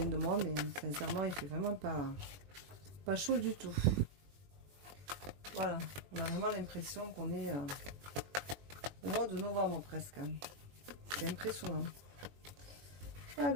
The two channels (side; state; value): left; late; 21 ms